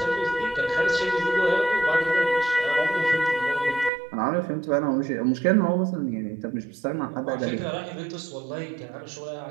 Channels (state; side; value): drops out; left; at 3.9 s